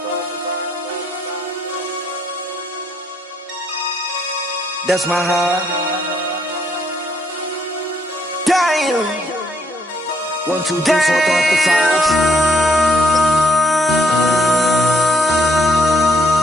That's my high. Damn. 1, 2, 3, 4, throw up to 5.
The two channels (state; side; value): normal; both; correlation 0.71